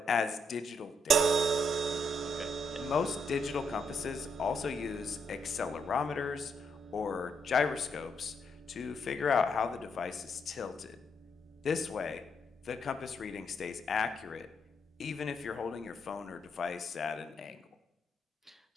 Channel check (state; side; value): normal; both; correlation 0.76